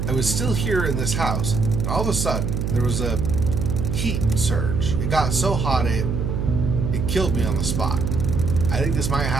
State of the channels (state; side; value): noise; right; hum, 1 dB below the sound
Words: I was still here in this house, and all of a sudden, there was a heat surge. It got so hot, it killed me on the spot. I think this might